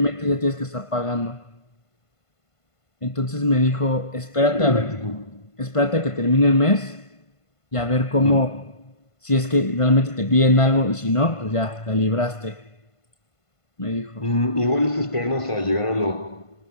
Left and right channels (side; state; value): right; late; 1.5 ms